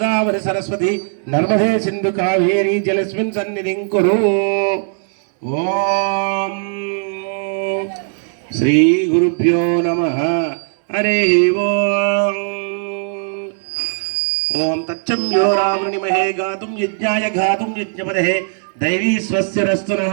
సరస్వతి నర్మదే సింధు కావేరి జలస్మిన్ సన్నిధిం కురు. ఓం శ్రీ గురుభ్యో నమః. హరి ఓం. ఓం తచ్చమ్యో రావృణిమహే గాతుం యజ్ఞాయ గాతుం యజ్ఞపదే దైవీ స్వస్తిరస్తు నః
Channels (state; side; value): silent; left; 61 dB below the other